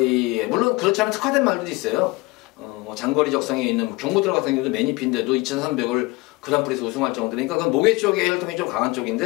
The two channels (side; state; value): right; quieter; 23.3 dB